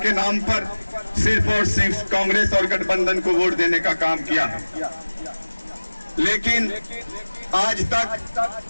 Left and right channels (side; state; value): both; inverted; correlation -1.00